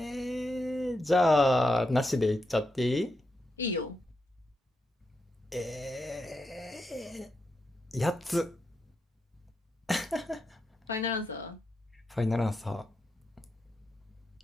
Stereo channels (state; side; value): normal; both; correlation 0.85